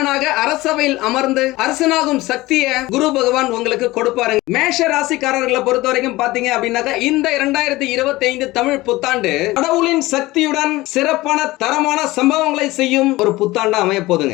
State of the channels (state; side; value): quieter; right; 19.2 dB